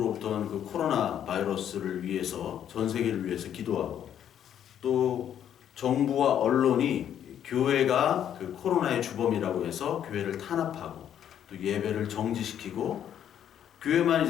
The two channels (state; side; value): quieter; right; 9.8 dB